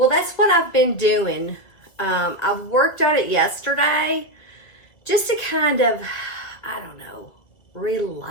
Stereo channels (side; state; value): right; late; 1.9 ms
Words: that's what I've been doing. I worked on it yesterday just to kind of, I don't know,